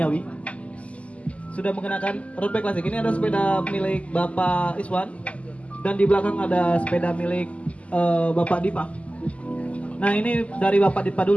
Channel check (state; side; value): late; right; 0.065 ms